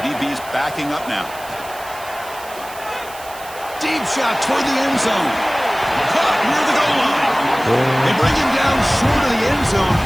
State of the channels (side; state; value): right; noise; hiss, 17 dB below the sound